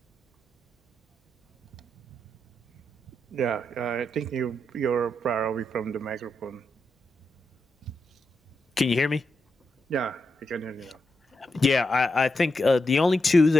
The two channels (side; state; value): both; normal; correlation 0.85